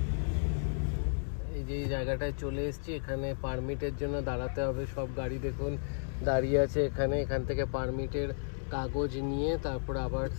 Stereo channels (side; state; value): right; silent; digital silence